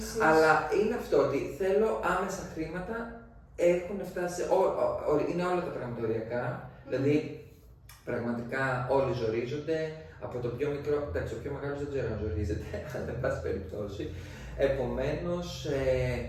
αλλά είναι αυτό ότι θέλω άμεσα χρήματα, έχουν φτάσει, είναι όλα τα πράγματα οριακά, δηλαδή πραγματικά όλοι ζορίζονται, από το πιο μικρό, εντάξει, ο πιο μεγάλος δεν ξέρω αν ζορίζεται, αλλά εν πάση περιπτώσει. Επομένως,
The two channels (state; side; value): identical; both; correlation 1.00